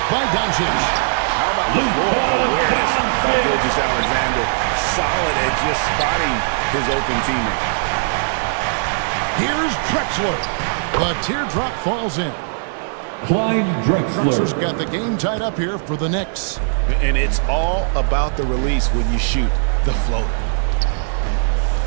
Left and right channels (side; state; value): left; silent; 58 dB below the other